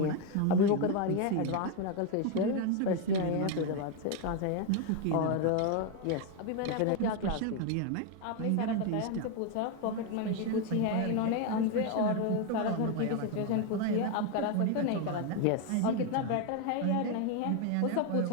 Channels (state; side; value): different; both; correlation 0.01